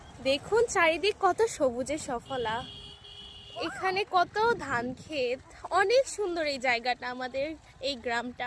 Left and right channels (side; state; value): both; identical; correlation 1.00